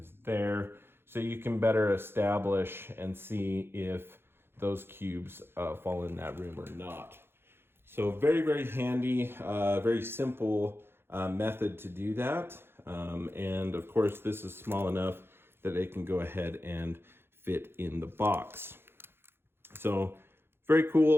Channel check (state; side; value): late; left; 0.11 ms